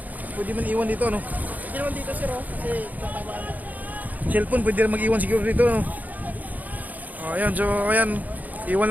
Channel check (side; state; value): left; late; 0.080 ms